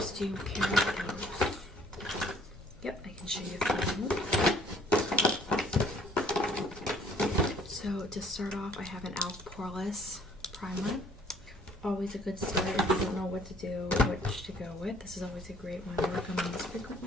Do you care about those? Yep, I can show you those. So to start off, I have an e.l.f. Poreless primer. Always a good start if you don't know what to do, which to go with. This is always a great one to recommend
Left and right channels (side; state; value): both; normal; correlation 0.58